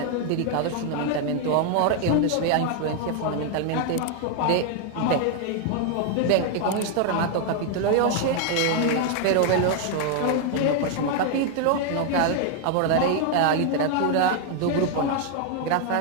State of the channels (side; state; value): both; different; correlation 0.00